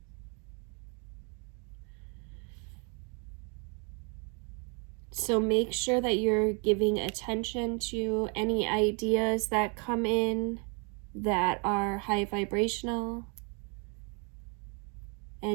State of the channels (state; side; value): quieter; left; 35.6 dB